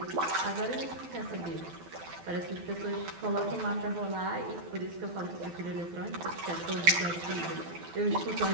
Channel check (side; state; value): left; late; 12 ms